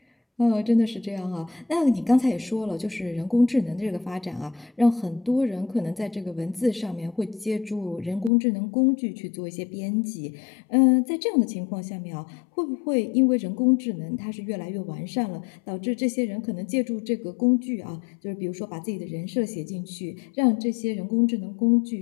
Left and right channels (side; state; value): right; drops out; at 8.3 s